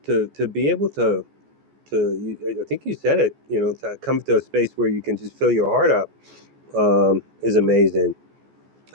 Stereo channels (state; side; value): late; left; 14 ms